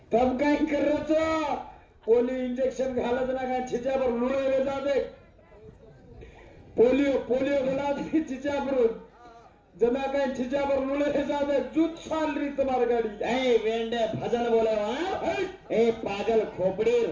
तब काय करायचं पोलिओ इंजेक्शन घालत ना काय छिच्यावर लुळे जाते पोलिओ घाला छिच्यावर जना काय छिच्यावर लुळे जाते जूत साल री तुम्हारी गाडी ए वेंडे भजन बोले वहां ए पागल खोपड़ीर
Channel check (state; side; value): identical; both; correlation 1.00